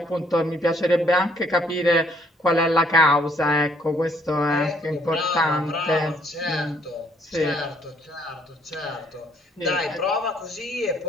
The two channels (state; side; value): normal; both; correlation 0.65